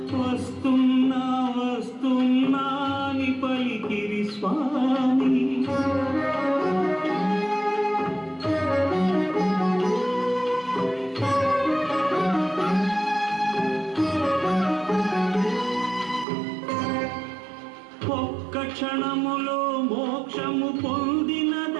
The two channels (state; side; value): drops out; left; at 16.2 s